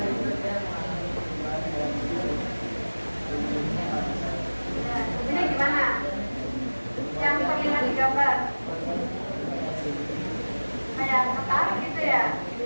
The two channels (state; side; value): inverted; both; correlation -1.00